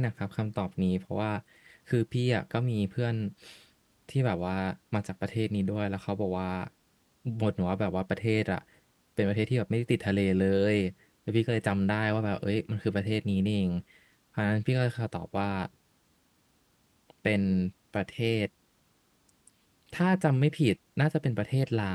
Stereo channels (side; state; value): both; identical; correlation 1.00